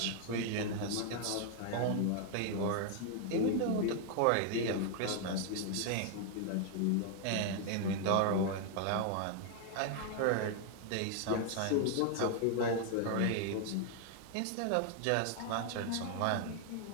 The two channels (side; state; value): both; different; correlation 0.00